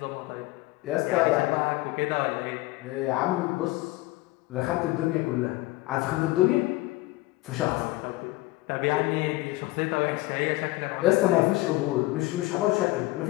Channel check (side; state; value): right; quieter; 20.0 dB